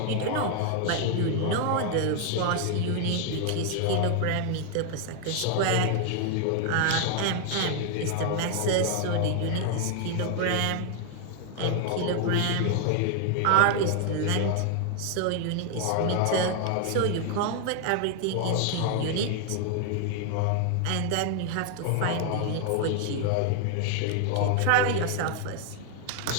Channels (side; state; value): both; different; correlation 0.00